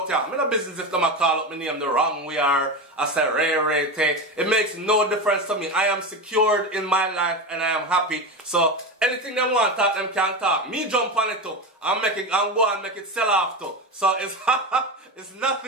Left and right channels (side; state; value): both; normal; correlation 0.21